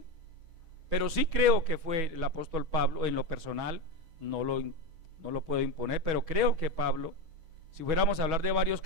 pero sí creo que fue el apóstol Pablo. En lo personal no lo puedo imponer, pero creo que Pablo. Si fuéramos a hablar de varios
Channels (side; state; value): left; late; 6.2 ms